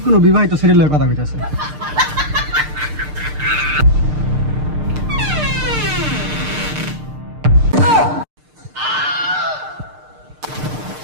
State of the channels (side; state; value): left; late; 6.6 ms